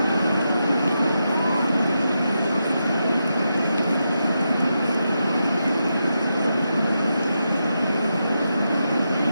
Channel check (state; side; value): inverted; both; correlation -0.86